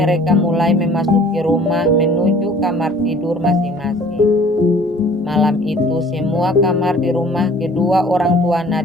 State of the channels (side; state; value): both; normal; correlation 0.51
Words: mulai memasuki rumah menuju kamar tidur masing-masing. Malam itu semua kamar di rumah kedua orang tua